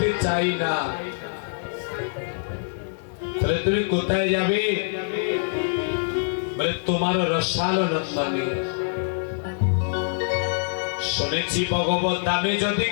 চাই না। তাহলে তুমি কোথায় যাবে? বলে তোমার রসালো নন্দনে। শুনেছি ভগবত ধামে যদি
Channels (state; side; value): silent; right; 62 dB below the other